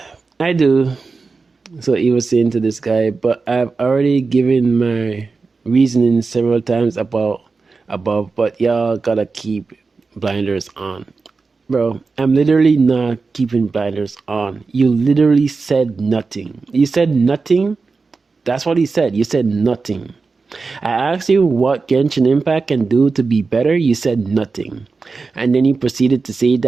I do. So he was saying to this guy, but I've already given my reasoning several times above, but y'all gotta keep blinders on. Bro, I'm literally not keeping blinders on. You literally said nothing. You said nothing That's what he said. You said nothing. I asked you what Genshin Impact can do to be better. You said nothing. And then you proceeded to say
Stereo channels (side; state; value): left; quieter; 4.3 dB